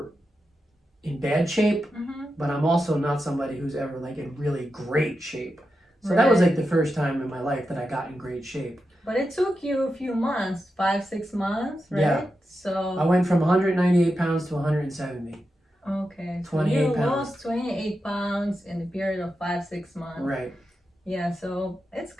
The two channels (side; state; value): both; normal; correlation 0.89